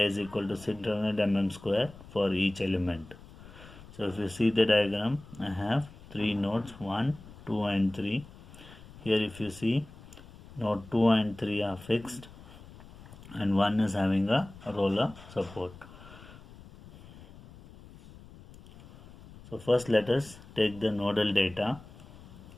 is equal to 600 mm square for each element. So if you see the diagram, I have 3 nodes 1, 2 and 3. Here if you see, node 2 and 3 are fixed and 1 is having a roller support. So first let us take the nodal data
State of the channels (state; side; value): noise; left; rumble, 19 dB below the sound